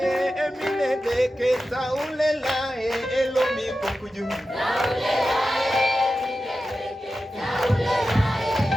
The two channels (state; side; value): normal; both; correlation 0.92